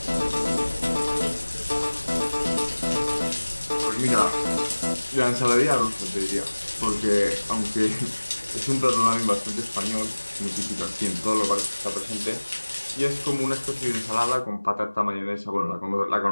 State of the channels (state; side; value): inverted; both; correlation -1.00